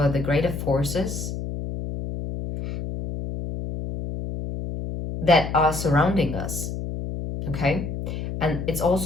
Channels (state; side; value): noise; left; hum, 5 dB below the sound